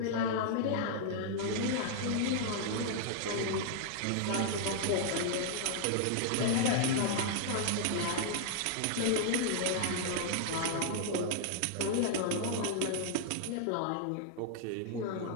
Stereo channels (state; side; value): different; both; correlation 0.00